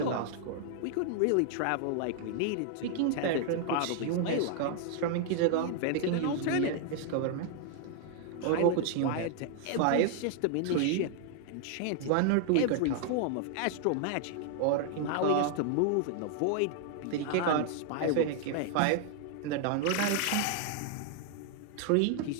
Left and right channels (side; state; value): both; different; correlation 0.00